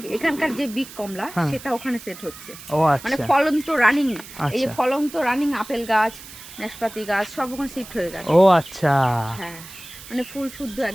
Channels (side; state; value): right; noise; hiss, 16 dB below the sound